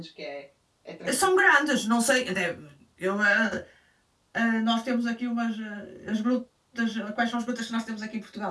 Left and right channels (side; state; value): both; identical; correlation 1.00